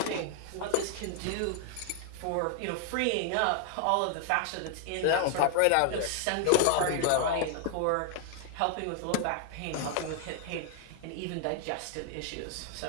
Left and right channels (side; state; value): both; different; correlation 0.00